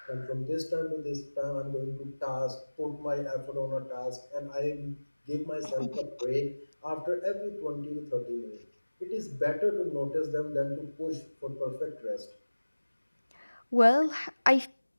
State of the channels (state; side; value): inverted; both; correlation -1.00